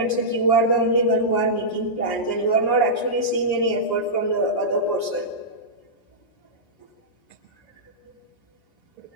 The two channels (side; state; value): right; late; 6.4 ms